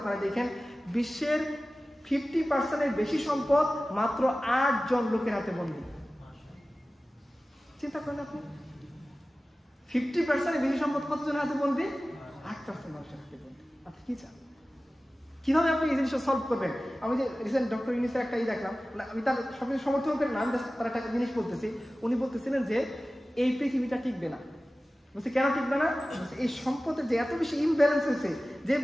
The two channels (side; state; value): both; normal; correlation 0.96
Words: দেখেন বিশ্বের 50% বেশি সম্পদ মাত্র 8 জন লোকের হাতে বন্দী। চিন্তা করেন আপনি, 50% বেশি সম্পদ কতজনের হাতে বন্দী? 8% মানুষের হাতে বন্দী। আপনি কি চান? কিভাবে আপনি এই জিনিসটা সলভ করবেন? আমি যে রিসেন্ট ডক্টর ইউনিসের একটা দেখলাম, আমি তার সবকিছু সমর্থন করি না, আমি তার একটা জিনিস বলতেছি। উনি বলতেছিলেন যে এই পৃথিবীটা টিকবে না। বলছে কেন টিকবে না? এই সম্পদের যে এত বেশি ইমব্যালেন্স হয়েছে, যে